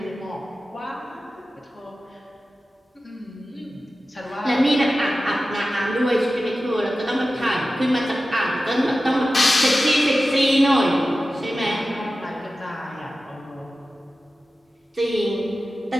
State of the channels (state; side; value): normal; both; correlation 0.94